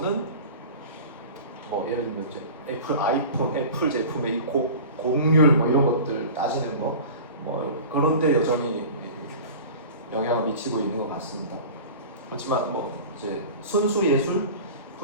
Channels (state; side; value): inverted; both; correlation -0.36